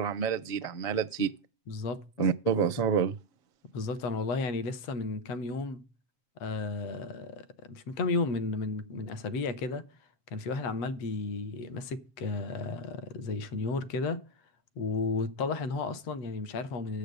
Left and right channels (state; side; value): late; right; 7.6 ms